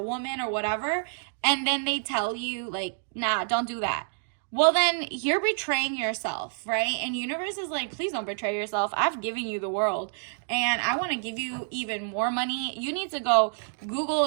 woman or whatever, and then they tell you, like, nah, don't do that. Well, then you're betraying yourself, right? And universe is like, please don't betray yourself. I've given you the world, and I want to give you even more money. You need to go Google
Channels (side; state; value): left; silent; digital silence